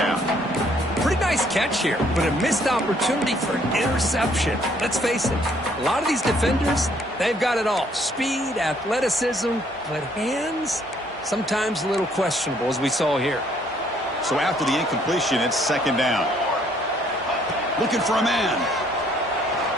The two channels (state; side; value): normal; both; correlation 0.65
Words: Pretty nice catch here, but a missed opportunity for an interception. Let's face it, a lot of these defenders, they've got it all. Speed, athleticism, but hands, sometimes a little questionable, as we saw here. So after the incompletion, it's second down. Looking for a man.